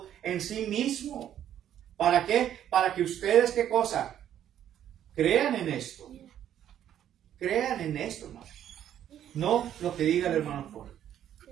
en sí mismo. ¿Para qué? Para que ustedes, ¿qué cosa? Crean en esto. Crean en esto, hermano. No lo que diga el hermano Jorge.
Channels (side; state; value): left; quieter; 10.6 dB